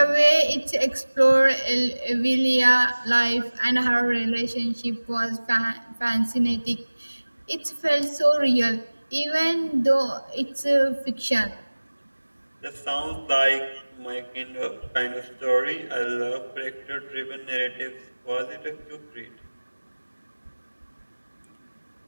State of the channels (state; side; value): inverted; both; correlation -1.00